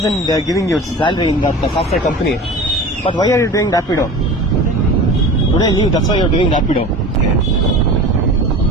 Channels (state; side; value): normal; both; correlation 0.35